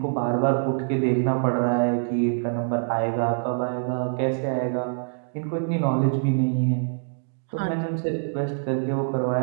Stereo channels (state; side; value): silent; left; digital silence